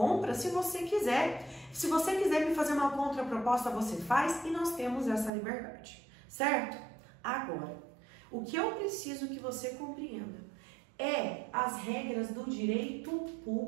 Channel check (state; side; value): drops out; left; at 5.3 s